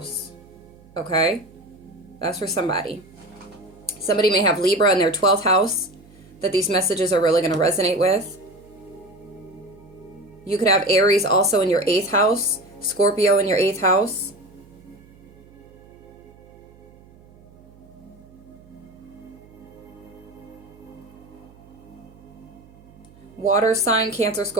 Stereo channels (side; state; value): right; noise; hum, 24 dB below the sound